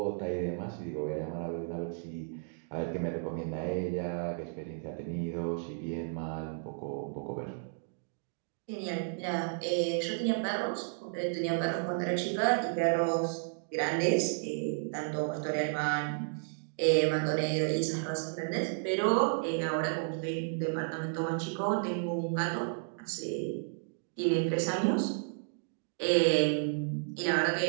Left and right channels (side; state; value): left; silent; digital silence